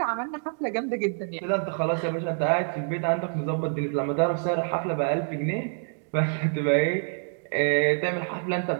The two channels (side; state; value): left; silent; 60 dB below the other